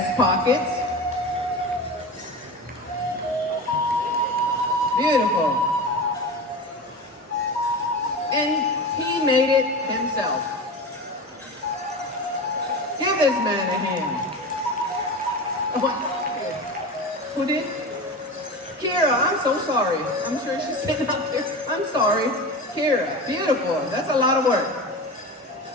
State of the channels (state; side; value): normal; both; correlation 0.28